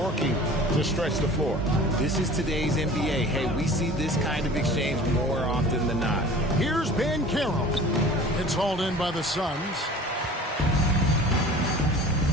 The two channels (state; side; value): normal; both; correlation 0.43